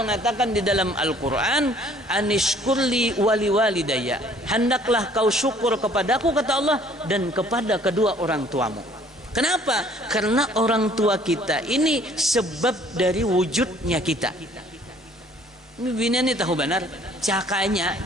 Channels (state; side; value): normal; both; correlation 0.57